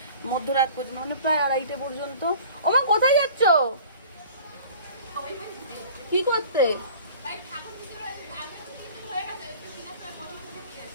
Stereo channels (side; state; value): both; inverted; correlation -0.46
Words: মধ্যরাত পর্যন্ত, মানে প্রায় 2:30 পর্যন্ত। ওমা, কোথায় যাচ্ছ? কি করতে?